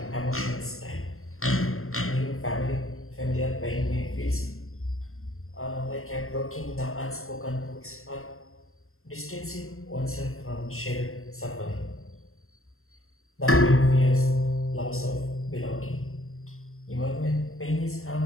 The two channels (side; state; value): right; late; 0.62 ms